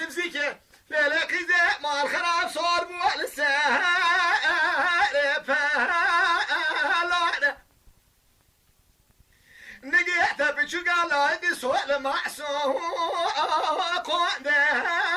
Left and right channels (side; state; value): both; identical; correlation 1.00